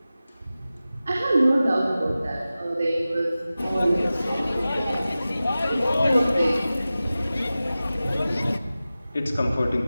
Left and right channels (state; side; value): inverted; both; correlation -0.95